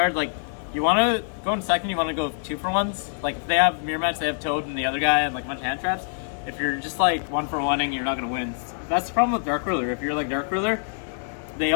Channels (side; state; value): right; silent; 62 dB below the other